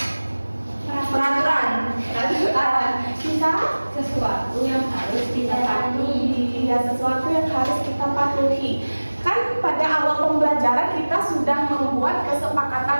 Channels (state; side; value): inverted; both; correlation -1.00